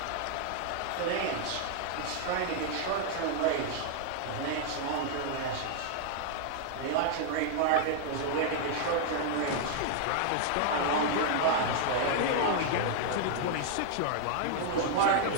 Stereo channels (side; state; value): both; different; correlation -0.01